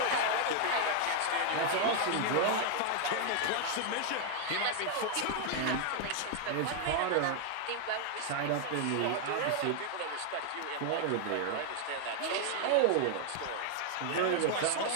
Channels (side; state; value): both; different; correlation 0.00